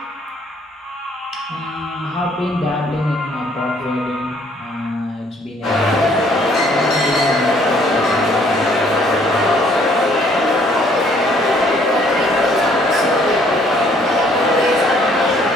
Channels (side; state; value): both; normal; correlation 0.62